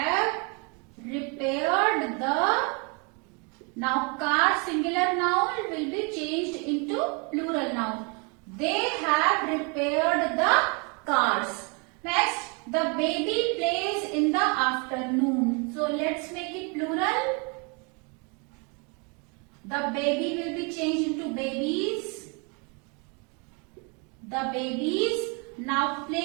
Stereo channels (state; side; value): quieter; left; 33.2 dB